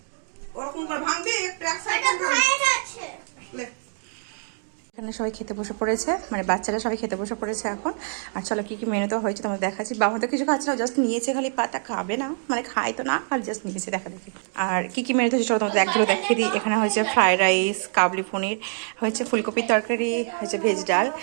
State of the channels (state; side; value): silent; left; 59 dB below the other